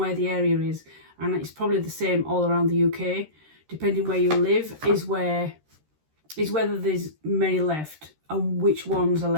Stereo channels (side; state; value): left; late; 13 ms